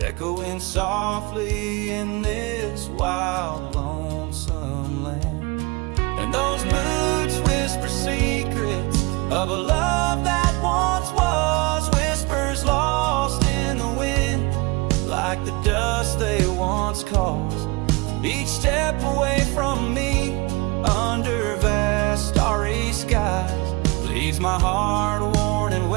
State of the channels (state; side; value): quieter; left; 25.8 dB